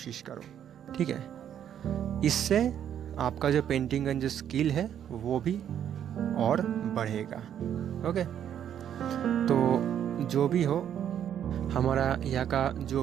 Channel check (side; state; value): left; quieter; 9.7 dB